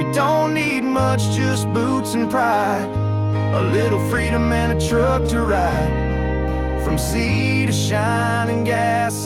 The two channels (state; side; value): identical; both; correlation 1.00